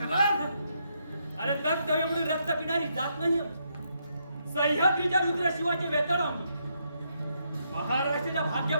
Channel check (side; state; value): both; inverted; correlation -0.77